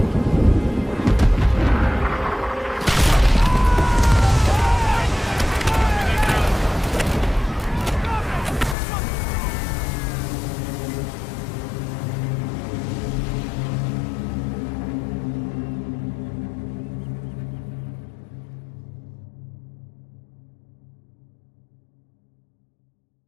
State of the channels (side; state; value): right; drops out; at 8.8 s